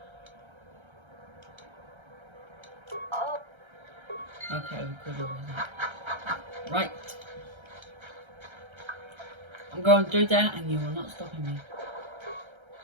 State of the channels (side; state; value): left; late; 1.3 ms